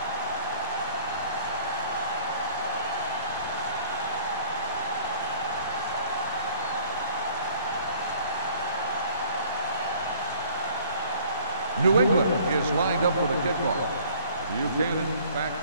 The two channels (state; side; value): inverted; both; correlation -0.54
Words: New England is lined up for the kickoff. Buchanan back